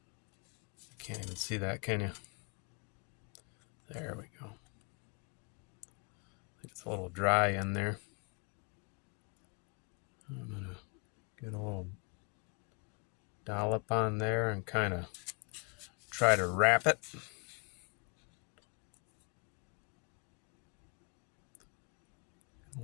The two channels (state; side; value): quieter; right; 33.4 dB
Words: You can't even see that, can you? There we go. I think it's a little dry in there. I'm gonna get a little dollop on there and kind of try to wrap it. A